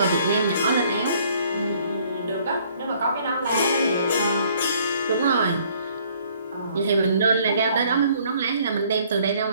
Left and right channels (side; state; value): both; inverted; correlation -0.61